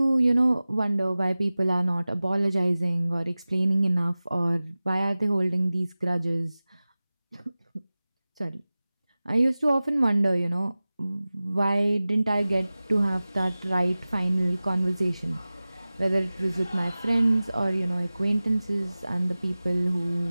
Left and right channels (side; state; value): both; inverted; correlation -0.97